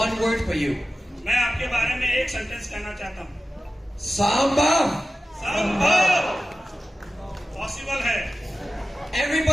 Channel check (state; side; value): normal; both; correlation 0.95